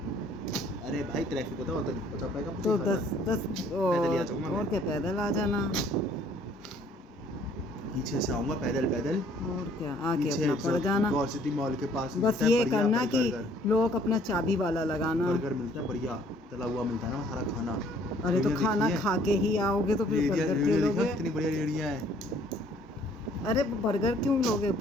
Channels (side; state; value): both; normal; correlation 0.59